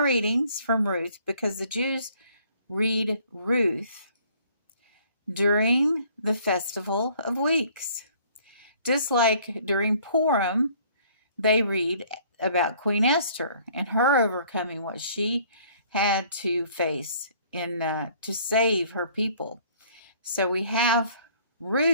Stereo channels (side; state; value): both; inverted; correlation -0.58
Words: from Ruth because the Jews read Ruth during the Festival of Weeks. Just like during Purim, they read about Queen Esther and her overcoming what she had to face to save her people. So we have